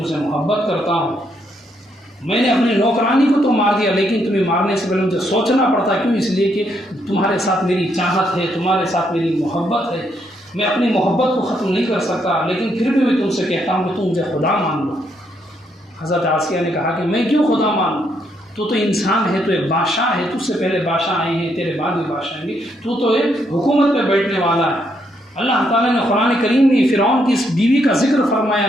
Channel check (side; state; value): both; normal; correlation 0.75